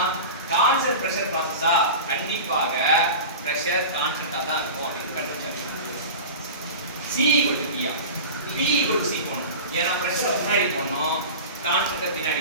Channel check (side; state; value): both; inverted; correlation -0.32